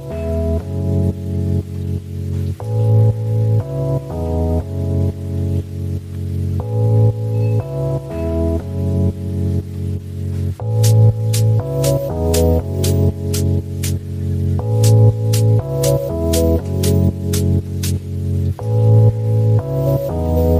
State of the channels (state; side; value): identical; both; correlation 1.00